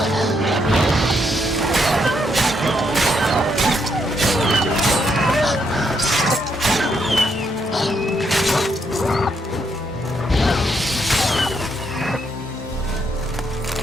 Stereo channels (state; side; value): normal; both; correlation 0.76